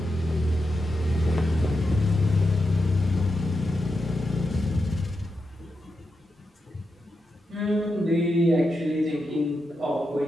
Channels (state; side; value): normal; both; correlation 0.87